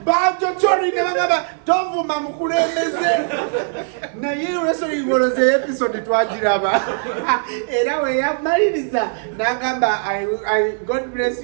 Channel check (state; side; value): silent; left; digital silence